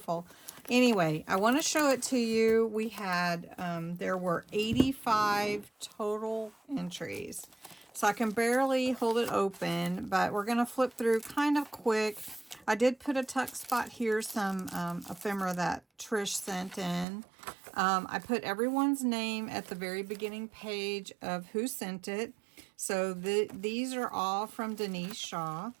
Anyway, I want to show it to you. We had, there were 85 total entries. So I can barely hold it open, but we're going to flip through kind of quick. I did put a tuck spot here, some ephemera that Trish sent in. I put everyone's name at the very beginning page of who sent it. So these are all from Denise Shaw.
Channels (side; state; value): left; drops out; at 17.1 s